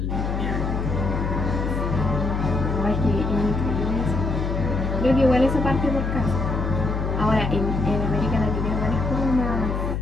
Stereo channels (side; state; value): left; noise; hum, 1 dB below the sound